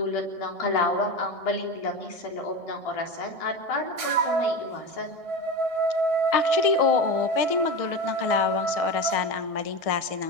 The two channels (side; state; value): right; late; 1.6 ms